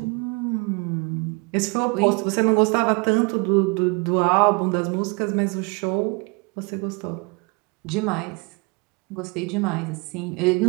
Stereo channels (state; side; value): quieter; left; 30.3 dB